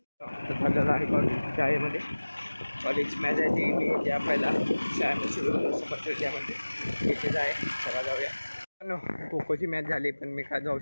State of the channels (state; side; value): inverted; both; correlation -1.00